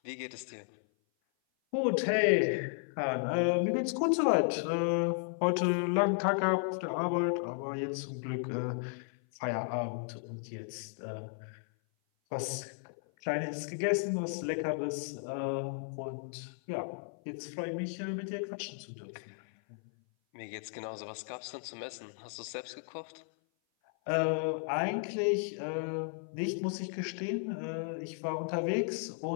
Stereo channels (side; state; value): right; silent; 55 dB below the other